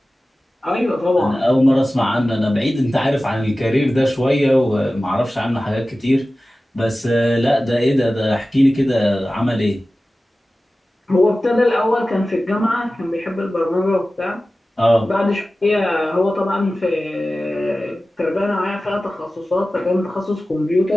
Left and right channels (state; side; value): normal; both; correlation 0.96